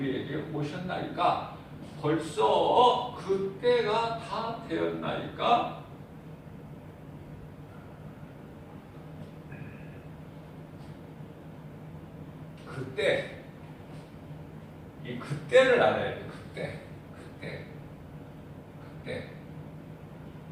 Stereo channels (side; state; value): both; identical; correlation 1.00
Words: 오셨나이까? 벌써 그때가 다 되었나이까? 그때, 이 그때를 알아야 돼. 그때.